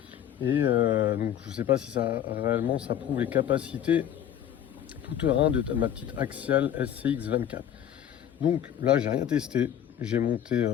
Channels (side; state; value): right; quieter; 10.2 dB